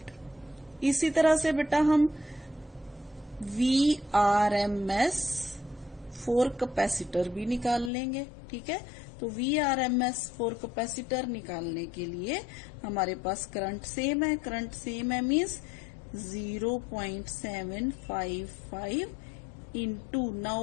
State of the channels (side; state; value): right; drops out; at 7.9 s